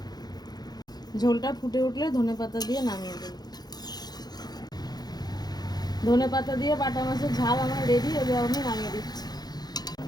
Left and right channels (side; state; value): right; late; 0.19 ms